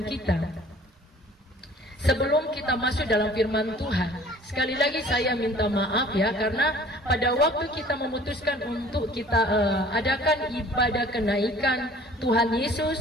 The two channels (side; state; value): both; normal; correlation 0.50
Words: kita. Sebelum kita masuk dalam firman Tuhan, sekali lagi saya minta maaf ya, karena pada waktu kita memutuskan untuk kita adakan ibadah kenaikan Tuhan